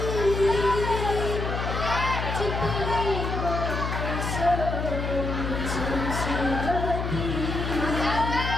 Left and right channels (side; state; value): left; noise; hum, 3 dB below the sound